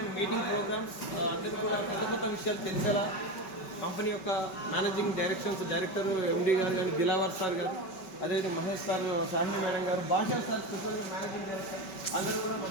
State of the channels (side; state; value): right; late; 5.3 ms